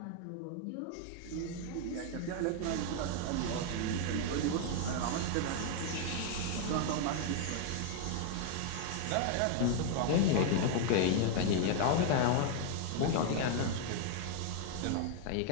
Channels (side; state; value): both; different; correlation 0.00